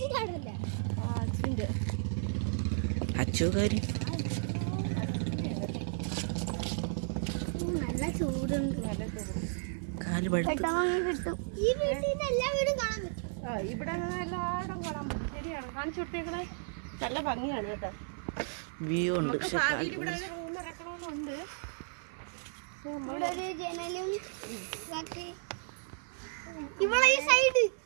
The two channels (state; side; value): silent; left; 55 dB below the other